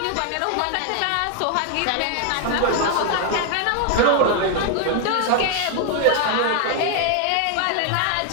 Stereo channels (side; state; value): both; different; correlation 0.00